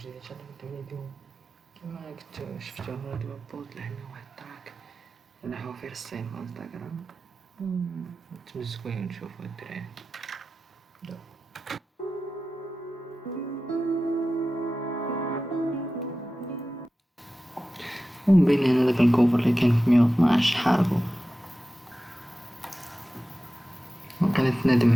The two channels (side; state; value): both; normal; correlation 0.94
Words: ان شاء الله نبداو فيديو كما كنتو شفتو هو دابا بوست لحنا واحد التراك انا حوافير الصين في انستغرام نتمزكو ونشوفو الدراري ومبين هنا داك الكوفر اللي كان في 112 حاربو وكانت ندم